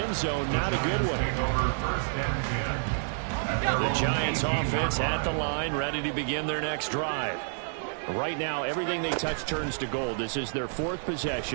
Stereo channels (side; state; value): left; silent; 59 dB below the other